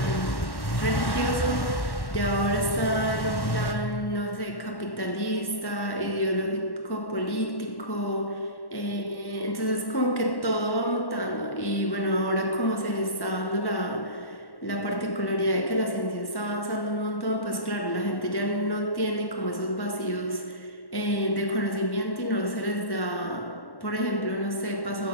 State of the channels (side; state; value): right; late; 1.1 ms